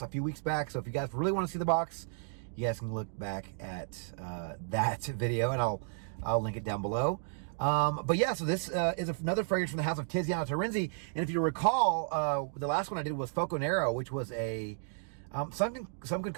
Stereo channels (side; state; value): left; silent; digital silence